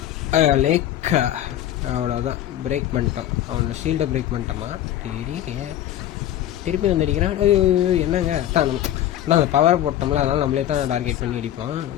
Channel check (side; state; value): right; quieter; 12.1 dB